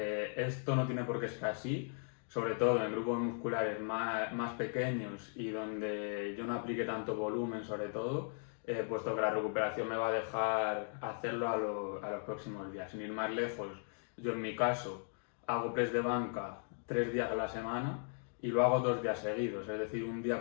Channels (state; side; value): silent; right; 53 dB below the other